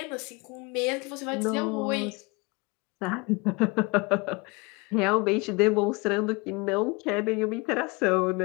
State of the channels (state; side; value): quieter; right; 26.8 dB